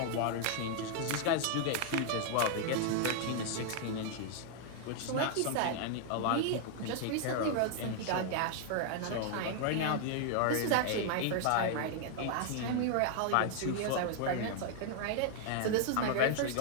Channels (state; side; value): different; both; correlation 0.00